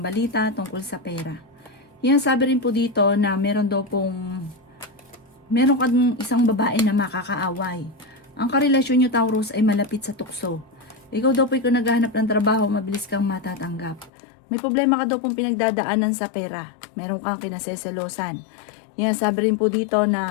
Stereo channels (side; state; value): right; drops out; at 14.1 s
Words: balita tungkol sa pera. Sabi rin po dito na meron kang isang babae na makakaaway. Ang karelasyon nyo Taurus ay malapit sa tukso. Ikaw daw po kung naghahanap ng trabaho, mabilis kang matatanggap. May problema ka daw pong pinagdadaanan sa pera. Meron kang kinaseselosan. Sabi rin po dito